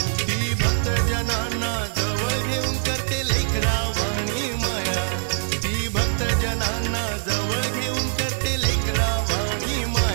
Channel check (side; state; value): left; silent; 58 dB below the other